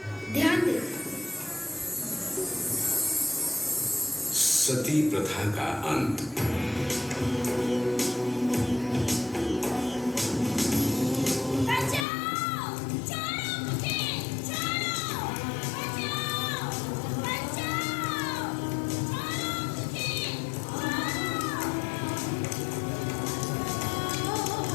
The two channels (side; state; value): right; drops out; at 12.1 s